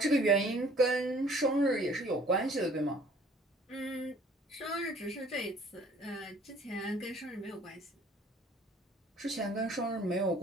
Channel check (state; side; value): normal; both; correlation 0.55